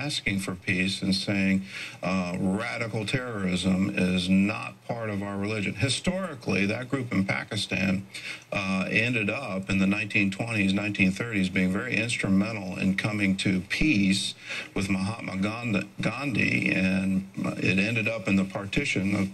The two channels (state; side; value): identical; both; correlation 1.00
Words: for peace and saying radical terrorism is not part of our religion. Historically, that group in Pakistan ended up in the 1920s, 1930s being very instrumental in coming to peace with Mahatma Gandhi, and it ended up in the partition